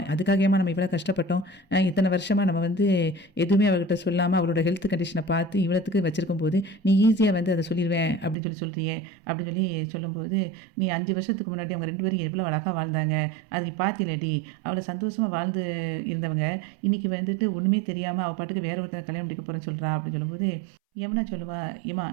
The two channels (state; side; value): drops out; left; at 8.3 s